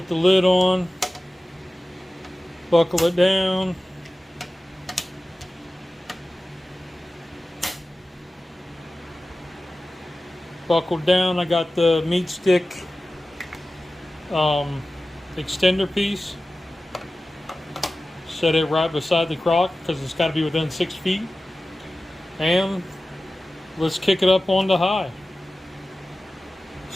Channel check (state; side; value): normal; both; correlation 0.96